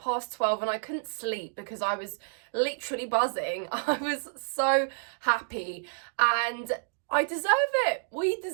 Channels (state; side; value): silent; left; digital silence